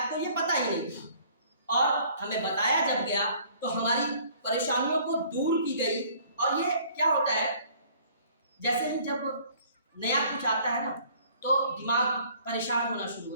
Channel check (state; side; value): inverted; both; correlation -0.56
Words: को, ये पता ही नहीं था। और हमें बताया जब गया तो हमारी परेशानियों को दूर की गई। और ये क्या होता है, जैसे ही जब नया कुछ आता है ना तो दिमाग परेशान होना शुरू हो